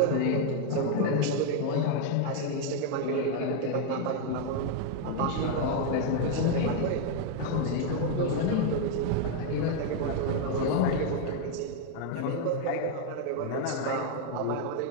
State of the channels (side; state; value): both; different; correlation 0.00